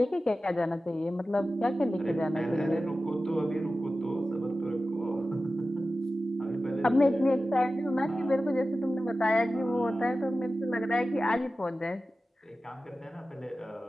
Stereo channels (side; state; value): both; normal; correlation 0.94